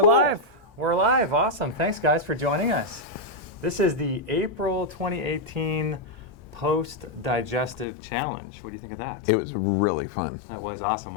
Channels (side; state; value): right; drops out; at 7.9 s